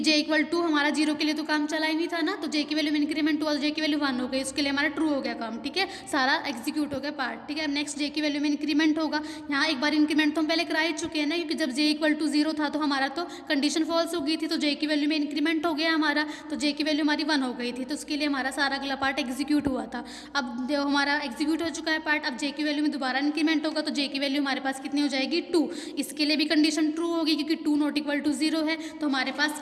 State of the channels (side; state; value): both; identical; correlation 1.00